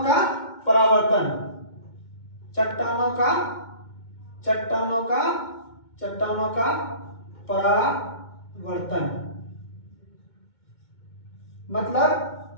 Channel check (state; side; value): late; right; 2.2 ms